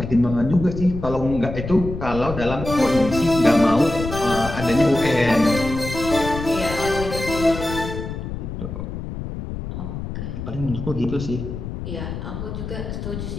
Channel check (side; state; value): left; noise; rumble, 7 dB below the sound